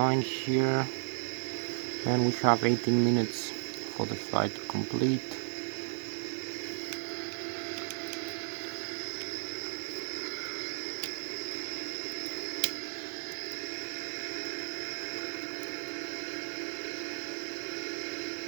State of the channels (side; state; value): left; silent; digital silence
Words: here, and we have 18 minutes for the flight to complete.